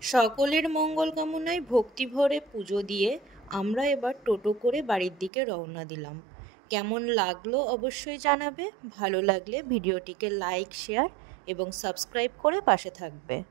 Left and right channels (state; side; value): drops out; left; at 5.3 s